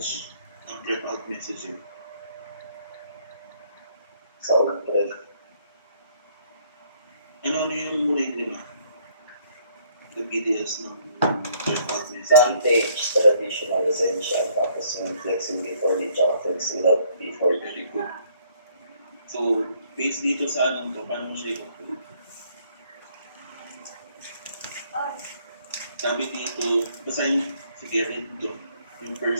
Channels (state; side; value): inverted; both; correlation -0.65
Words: prep-out messaging? Sound prep. Ano yung muna yung lima? The videos ng prep-out messaging? Vantage, traditional, essential, tapos yung flexing before the tsaka flexing without before. Very good. So, based dito sa anong to, paano mo siya i-conclude? Sabi dito, basahin, sige, read to. Yung